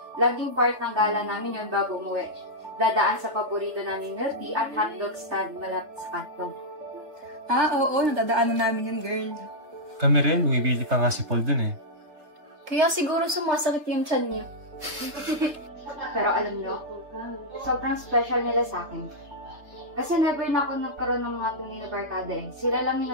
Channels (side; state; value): left; late; 3.5 ms